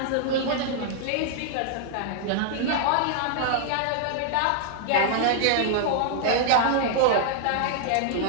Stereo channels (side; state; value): both; different; correlation -0.01